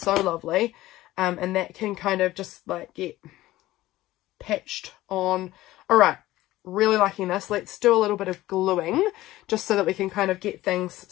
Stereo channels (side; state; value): right; quieter; 16.5 dB